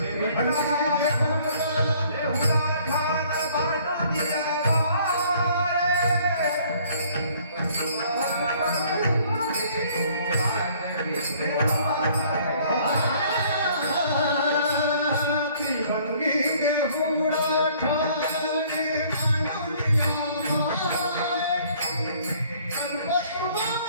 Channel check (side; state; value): both; inverted; correlation -0.58